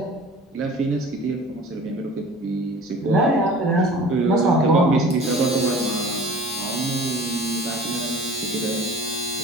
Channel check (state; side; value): normal; both; correlation 0.43